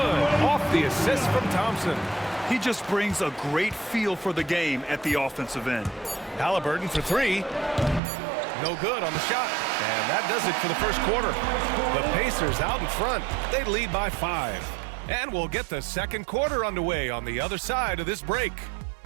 Off the assist from Thompson. He just brings a great feel for the game at the offensive end. Halliburton for 3. No good on the shot. And that does it for the first quarter. The Pacers out in front. They lead by 5. And we'll get the second quarter underway on the other side of this break.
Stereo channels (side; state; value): left; drops out; at 8.0 s